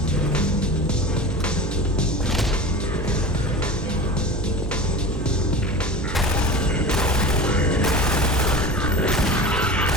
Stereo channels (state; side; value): noise; right; hum, 7 dB below the sound